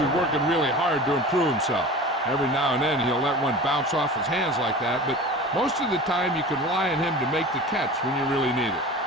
working really hard to improve himself. Every now and then he'll let one bounce off his hands like that, but most of the time you can rely on him to make the catch when you really need it.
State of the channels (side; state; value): both; normal; correlation 0.36